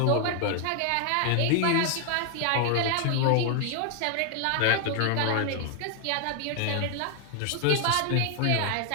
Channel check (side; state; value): both; different; correlation 0.00